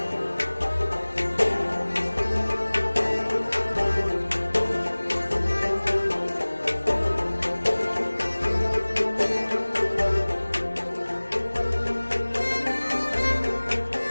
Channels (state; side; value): inverted; both; correlation -1.00